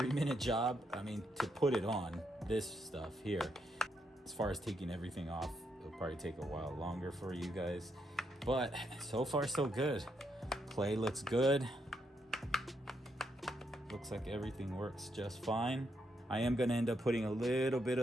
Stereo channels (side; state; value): both; normal; correlation 0.79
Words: job. I mean, to put it on, this stuff here. As far as taking everything off, it'll probably take a while longer for you guys. But so far so good. Play looks good. Looks like everything works just fine. I am gonna end up putting a little bit